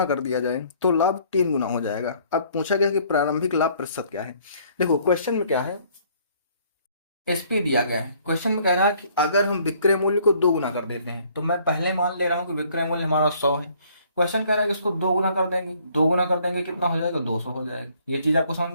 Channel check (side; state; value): both; inverted; correlation -0.61